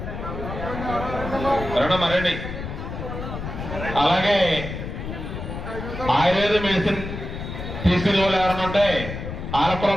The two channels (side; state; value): left; noise; rumble, 7 dB below the sound